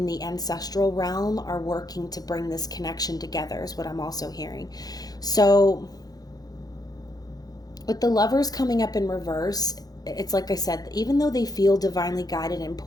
the ancestral realm are working to bring this connection together, is what I'm also hearing. So with the Lovers coming up in reverse, it's like I said, even though they feel divinely guided and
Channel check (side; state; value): right; late; 0.19 ms